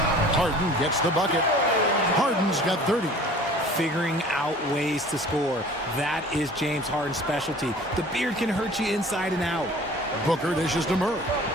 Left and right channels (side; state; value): both; normal; correlation 0.46